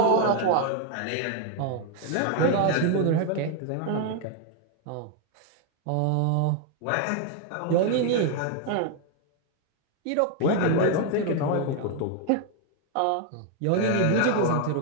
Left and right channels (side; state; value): both; different; correlation 0.01